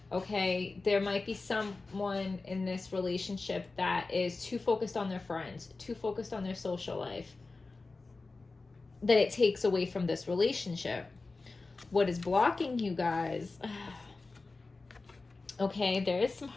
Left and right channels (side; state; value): right; quieter; 3.7 dB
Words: Okay, there might be someone in this relationship that is too focused on their friends, too focused on their social life, that it takes away from this relationship. What is blocking you guys? Okay, there is some